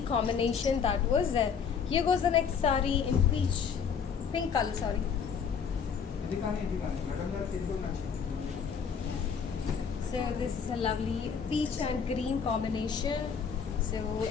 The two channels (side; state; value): right; quieter; 6.6 dB